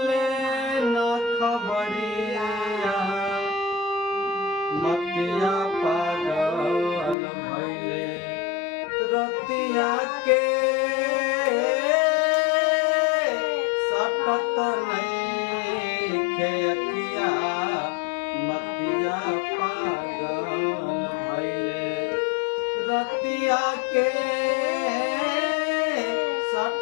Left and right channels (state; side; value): drops out; right; at 7.2 s